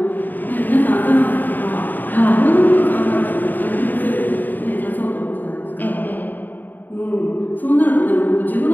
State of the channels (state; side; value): late; right; 0.088 ms